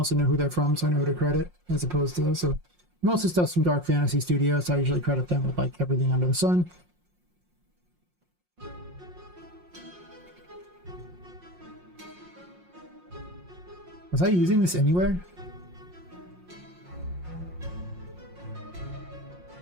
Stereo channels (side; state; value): left; late; 5.6 ms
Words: know who they're from, so I know who to credit, as opposed to this. So most of the stuff's from Dark Fantasy Studios, so I usually credit them with like everything under the sun. Was I using this anywhere?